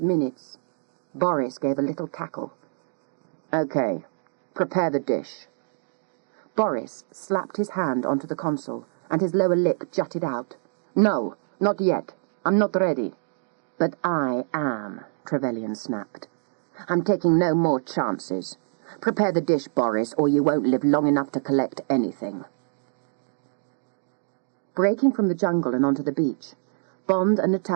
minutes. Boris gave a little cackle. Okay, prepare the dish. Boris slapped his hand onto the console, and his lower lip jutted out. No, not yet. I'm not ready. But I am, Trevelyan snapped. I'm taking no more chances. Prepare the dish, Boris, or you won't live long enough to collect anything. Breaking from the jungle and onto the beach, Bond and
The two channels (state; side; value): silent; left; digital silence